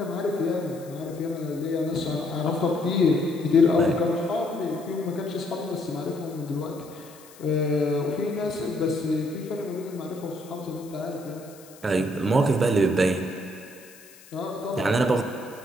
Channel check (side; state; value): left; noise; hiss, 22 dB below the sound